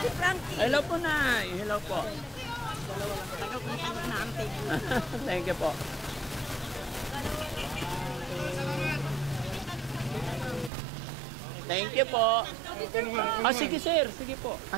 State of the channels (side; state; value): left; drops out; at 10.7 s